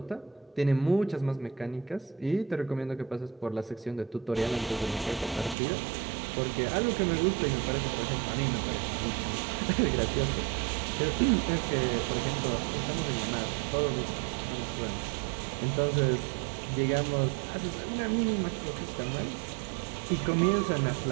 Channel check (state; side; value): drops out; left; at 5.6 s